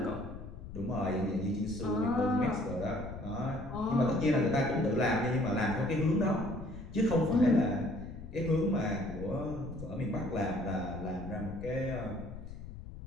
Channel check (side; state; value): left; noise; rumble, 12 dB below the sound